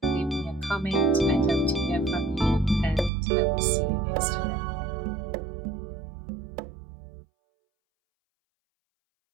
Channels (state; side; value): drops out; left; at 3.1 s